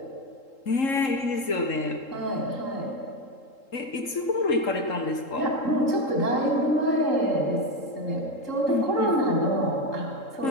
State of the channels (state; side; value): late; right; 3.8 ms